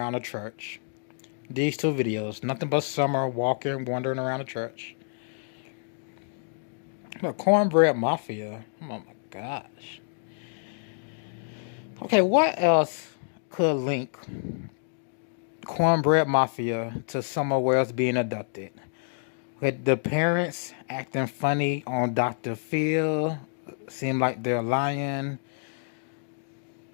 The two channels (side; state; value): right; silent; digital silence